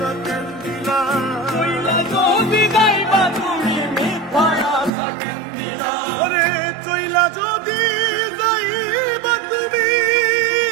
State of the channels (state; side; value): drops out; left; at 4.9 s